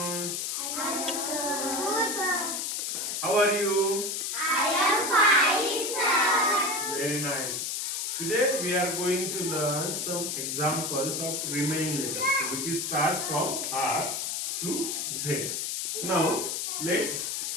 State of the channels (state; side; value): noise; left; hiss, 2 dB below the sound